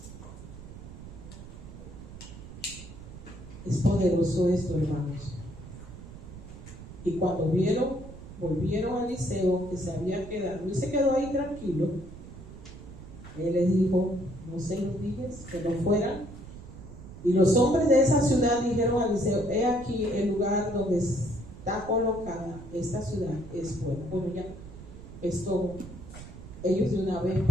Es poderoso esto, hermanos. Y cuando volvieron a Eliseo, que se había quedado, y se quedó ahí tranquilo, él les dijo, ¿no se lo dije? Que no fueran. Y los hombres de esa ciudad dijeron a Eliseo, he aquí el lugar donde está colocada esta ciudad es buena. Bueno, ya esto, ellos de una vez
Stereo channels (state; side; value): noise; right; rumble, 14 dB below the sound